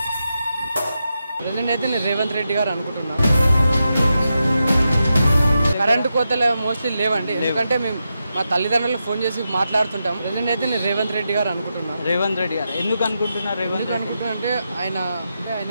అయితే నేను రేవంత్ రెడ్డి గారు అనుకుంటున్నా. కరెంటు కోతలు మోస్ట్లీ లేవండి, ఎందుకంటే మేము మా తల్లిదండ్రులు ఫోన్ చేసి మాట్లాడుతుంటాం. అయితే నేను రేవంత్ రెడ్డి గారు అనుకుంటున్నా. రేవంత్ రెడ్డి గారు ఎందుకు అనుకుంటున్నారు? రేవంత్ అనుకుంటున్నా అంటే ఆయన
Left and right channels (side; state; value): both; inverted; correlation -0.87